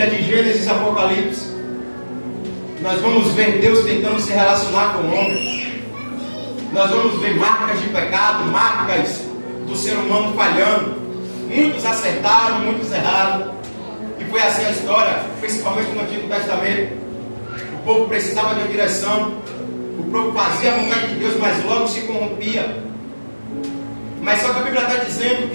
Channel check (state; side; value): inverted; both; correlation -1.00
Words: de Gênesis e Apocalipse, nós vamos ver Deus tentando se relacionar com o homem. Nós vamos ver marcas de pecado, marcas do ser humano falhando. Muitos acertaram, muitos erraram. E foi assim a história, principalmente no Antigo Testamento. O povo precisava de direção. O povo fazia a vontade de Deus, mas logo se corrompia. Mas só que a Bíblia está dizendo